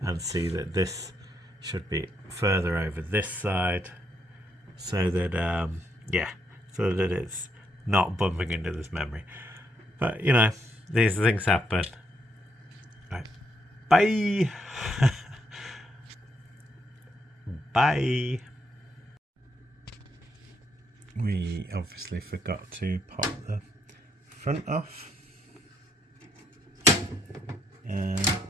and see that this should be further over this side, so that so that it's not bumping into this memory. But these things happen. Right. Bye. Bye. We obviously forgot to pop the front off, and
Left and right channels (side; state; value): both; normal; correlation 0.76